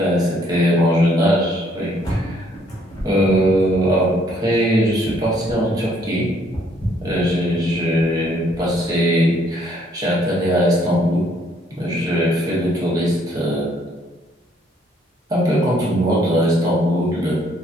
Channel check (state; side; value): normal; both; correlation 0.65